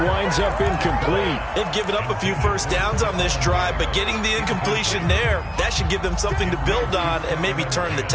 winds up incomplete. They've given up a few first downs on this drive, but getting the incompletion there, that should give them something to build on and maybe turn the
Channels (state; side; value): identical; both; correlation 1.00